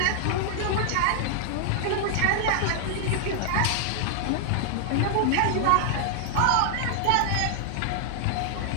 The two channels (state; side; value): different; both; correlation -0.01